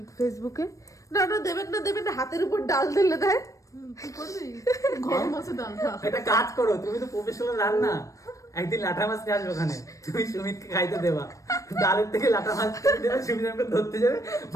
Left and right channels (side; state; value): right; late; 0.16 ms